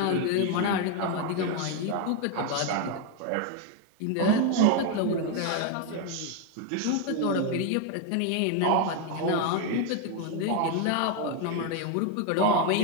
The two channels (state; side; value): different; both; correlation 0.01